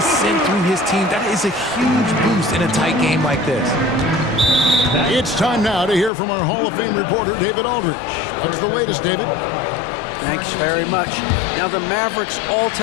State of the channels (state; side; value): drops out; right; at 6.1 s